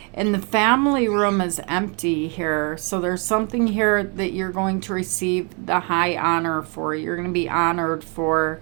And the family room is empty here. So there's something here that you're going to receive the high honor for. You're going to be honored for.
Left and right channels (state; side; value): quieter; left; 34.3 dB